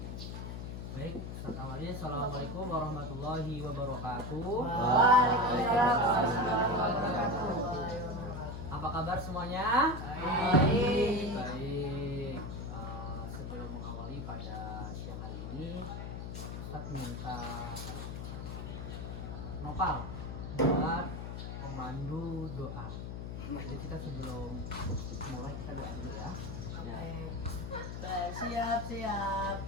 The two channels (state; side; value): noise; left; hum, 6 dB below the sound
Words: Baik, awalnya assalamualaikum warahmatullahi wabarakatuh. Waalaikumsalam warahmatullahi wabarakatuh. Apa kabar semuanya? Baik. Baik. Sebelum mengawali pada siang hari ini, Ustadz minta Nopal buat memandu doa. Jadi kita sebelum mulai kita doa dulu ya.